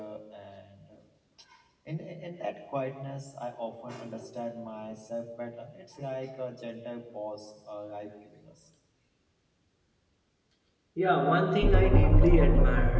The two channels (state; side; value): identical; both; correlation 1.00